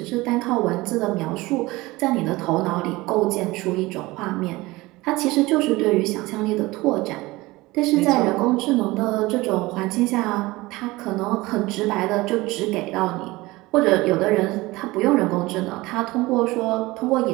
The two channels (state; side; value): quieter; left; 20.6 dB